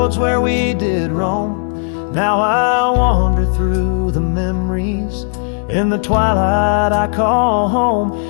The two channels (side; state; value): right; silent; digital silence